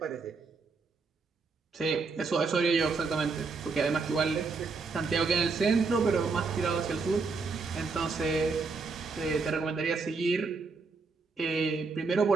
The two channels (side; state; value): left; quieter; 4.4 dB